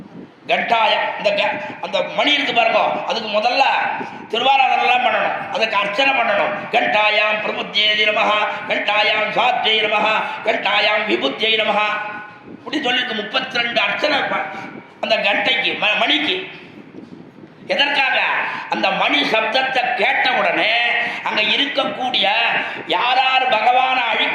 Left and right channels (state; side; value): identical; both; correlation 1.00